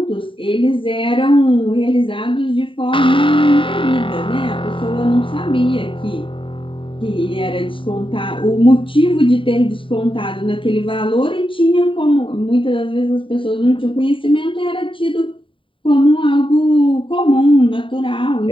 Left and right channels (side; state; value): right; late; 0.25 ms